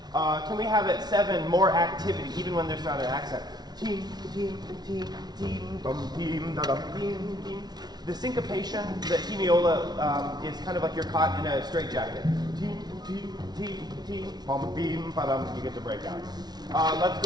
Can we have at 7 more activity, even when there's not an accent? Team, team, team, team, bum, team, da, dum, team, team. The syncopation, the hemiola, is kind of like you're caught in a straitjacket. Team, team, team, team, bum, beam, ba-dum. You get to break out. Let's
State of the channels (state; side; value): late; left; 0.19 ms